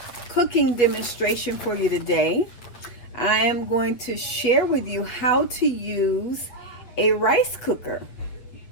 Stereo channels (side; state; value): right; late; 8.5 ms